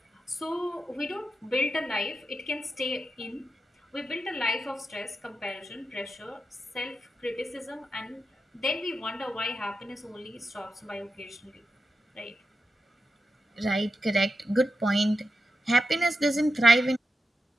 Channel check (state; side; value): normal; both; correlation 0.89